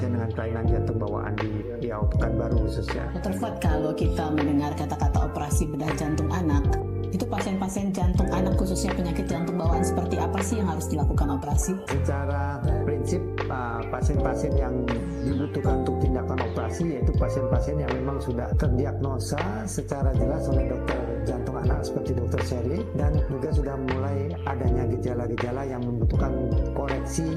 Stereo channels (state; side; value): identical; both; correlation 1.00